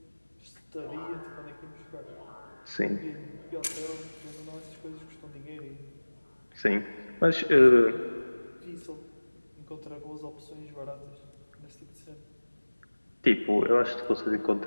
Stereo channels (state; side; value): inverted; both; correlation -1.00